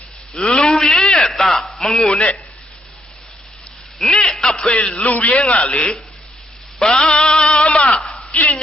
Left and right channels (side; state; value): both; normal; correlation 0.73